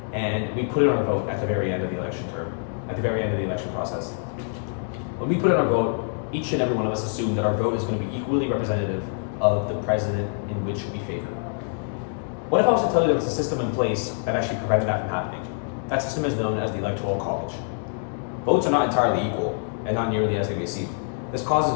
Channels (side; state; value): right; silent; 62 dB below the other